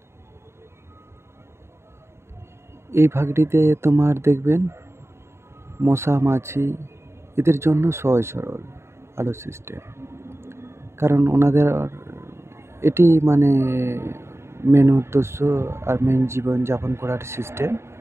এই ভাগটিতে তোমার দেখবেন মশা মাছি এদের জন্য সহজ সরল আলো সিস্টেম, কারণ ওনাদের এটি মেন উদ্দেশ্য আর মেন জীবন যাপন করার সিস্টেম।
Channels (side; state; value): left; late; 0.13 ms